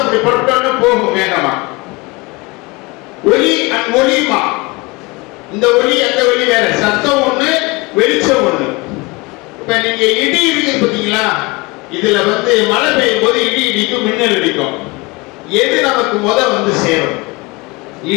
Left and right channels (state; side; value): quieter; right; 25.2 dB